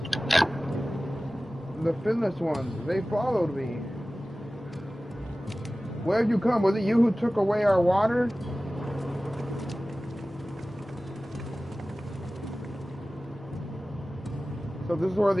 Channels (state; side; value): normal; both; correlation 0.97